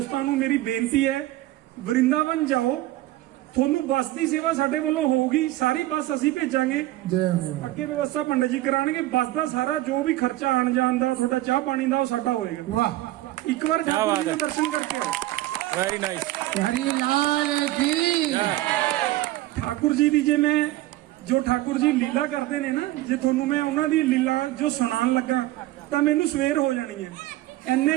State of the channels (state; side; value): quieter; left; 16.5 dB